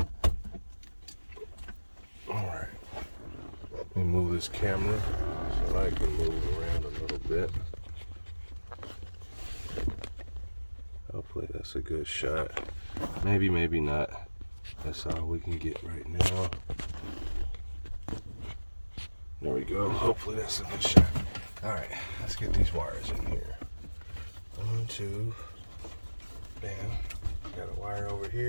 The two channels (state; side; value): inverted; both; correlation -1.00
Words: Alright. Let me move this camera so I can move around a little bit. Hopefully that's a good shot. Maybe, maybe not. That's all we can get right now. There we go. Hopefully that's a good shot. Alright, let's get these wires in here. 1, 2. Bam. Got a wire over